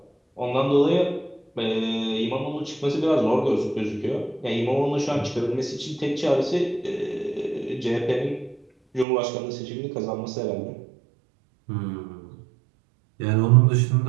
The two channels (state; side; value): drops out; left; at 9.1 s